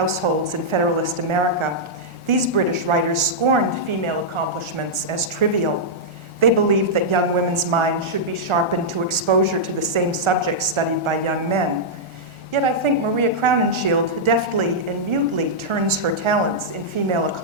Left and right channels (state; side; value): late; left; 1.4 ms